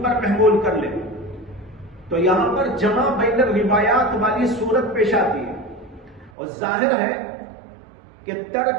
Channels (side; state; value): left; drops out; at 6.3 s